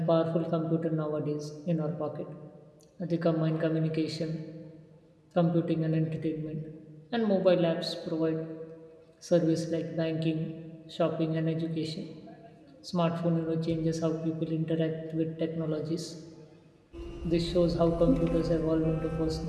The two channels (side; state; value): both; identical; correlation 1.00